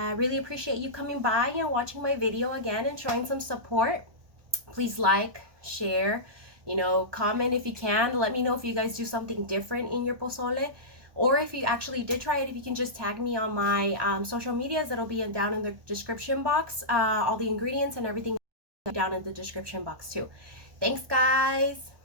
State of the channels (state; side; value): late; left; 1.2 ms